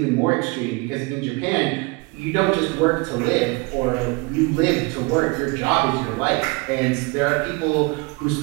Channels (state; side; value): quieter; left; 27.5 dB